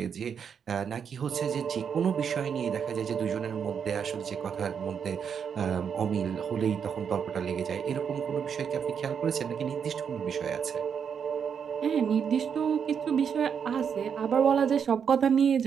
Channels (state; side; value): quieter; left; 7.2 dB